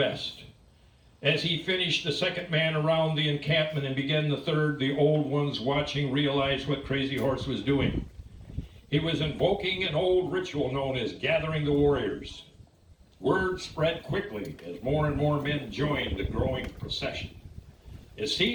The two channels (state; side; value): identical; both; correlation 1.00